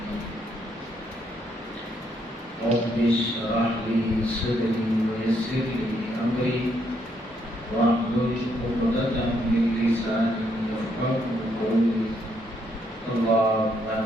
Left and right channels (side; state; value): both; normal; correlation 0.73